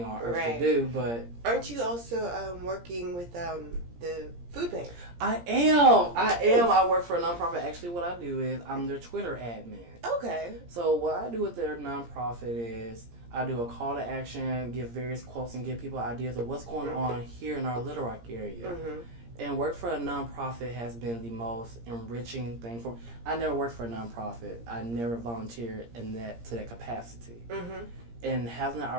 on earth to do, but... Aren't you also working with the food bank? I am. I work for a nonprofit. Actually, what I do is I'm their Twitter admin. Okay. So what I do with their nonprofit is I do a call to action, give various quotes, and give people ideas of what's going on here in our Little Rock area. Mm-hmm. And work for a nonprofit has been the most enriching thing for me. I never worked for a nonprofit. I never volunteered to that capacity. Mm-hmm. And having the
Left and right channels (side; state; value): left; late; 17 ms